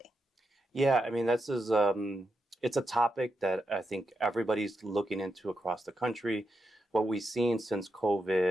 Yeah, I mean, this is it's a topic that I think everybody's looking into across the country. What we've seen since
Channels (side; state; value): both; normal; correlation 0.85